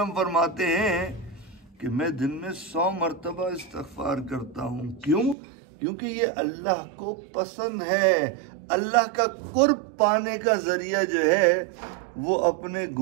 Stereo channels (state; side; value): drops out; left; at 5.4 s